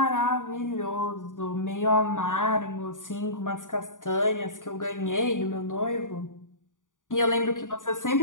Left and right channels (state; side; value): late; right; 0.88 ms